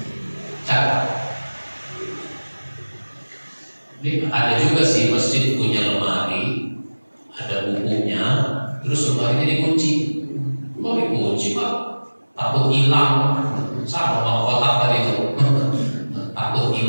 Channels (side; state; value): both; inverted; correlation -1.00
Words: Catat. Ini ada juga sih masjid punya lemari, ada bukunya, terus lemarinya dikunci. Kok dikunci, Pak? Takut hilang. Sama mau kotak tadi itu. Takut